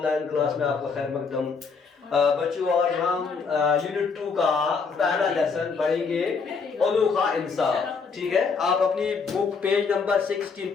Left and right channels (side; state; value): right; quieter; 5.1 dB